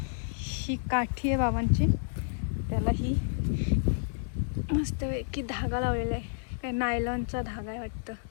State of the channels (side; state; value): right; silent; digital silence